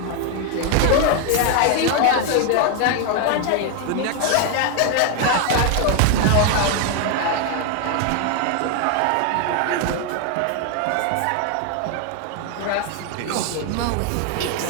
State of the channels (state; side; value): different; both; correlation 0.01